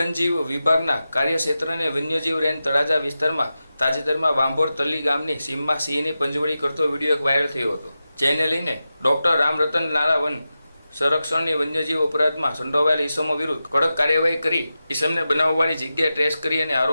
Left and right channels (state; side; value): inverted; both; correlation -0.92